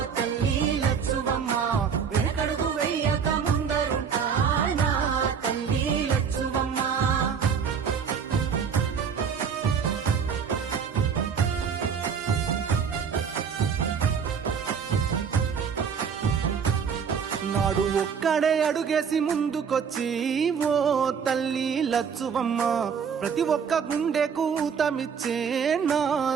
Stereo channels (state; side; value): quieter; left; 6.7 dB